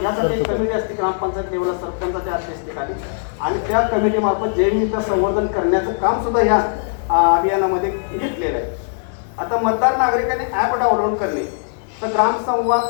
यासाठी एक कमिटी असते ग्रामपंचायत लेवलला सरपंचाच्या अध्यक्षतेखाली, आणि त्या कमिटीमार्फत जैवविविधता संवर्धन करण्याचं काम सुद्धा या अभियानामध्ये घेतलेलं आहे. आता मतदार नागरिकांनी ॲप डाउनलोड करणे, तर ग्रामसंवाद,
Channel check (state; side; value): silent; right; 62 dB below the other